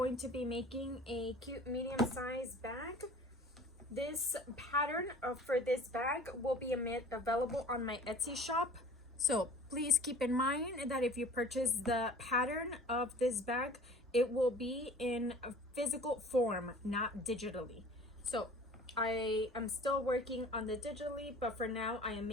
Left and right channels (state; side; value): normal; both; correlation 0.45